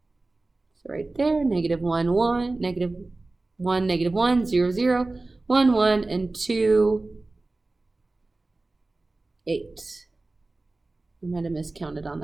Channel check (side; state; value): left; quieter; 3.2 dB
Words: So right there, -1, 1, -1, -1, 0, 0, 1, 1, and 2, 8. I might have miscounted on